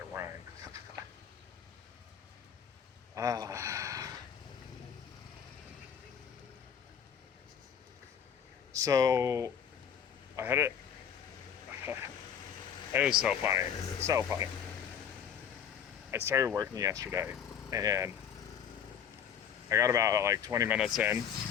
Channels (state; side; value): quieter; right; 8.1 dB